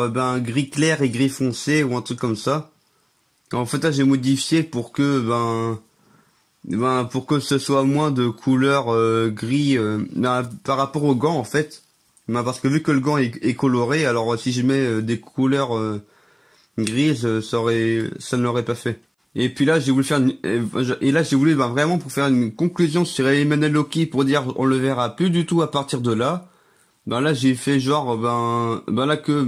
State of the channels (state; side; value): identical; both; correlation 1.00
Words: gris clair et gris foncé ou un truc comme ça. En fait là j'ai modifié pour que pour que ce soit moins de couleur gris par rapport au gant en fait. Parce que vu que le gant est coloré, alors si je mets des couleurs grises, ça ne l'aurait pas fait. Et puis là j'ai voulu faire et là j'ai voulu vraiment pour faire une conclusion sur Emmanuel Loki pour dire on le verra plus du tout à partir de là. Là j'ai fait genre là